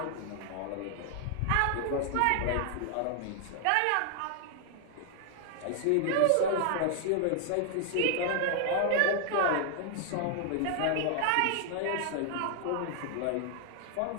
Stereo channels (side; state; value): both; different; correlation 0.00